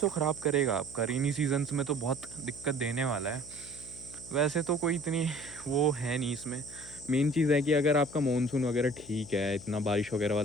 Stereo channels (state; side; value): noise; left; hum, 19 dB below the sound